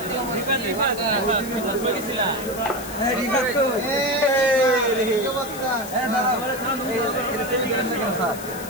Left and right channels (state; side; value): noise; left; hiss, 13 dB below the sound